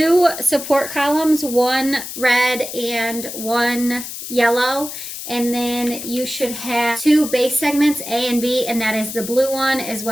support columns, 1 red and 1 yellow. And then you should have 2 base segments, A and B, and that is the blue one as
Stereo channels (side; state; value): left; noise; hiss, 9 dB below the sound